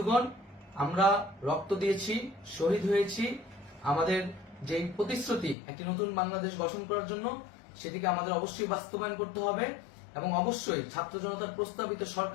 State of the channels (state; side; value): drops out; right; at 5.6 s